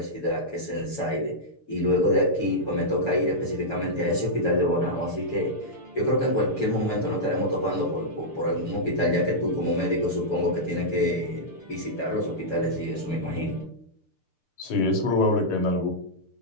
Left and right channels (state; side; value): late; right; 6.7 ms